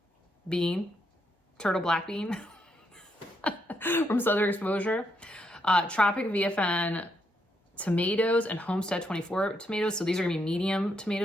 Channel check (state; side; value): normal; both; correlation 0.78